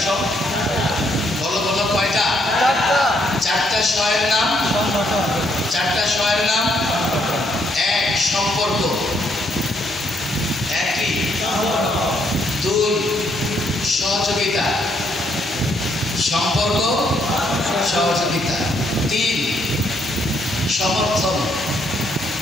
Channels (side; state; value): both; normal; correlation 0.72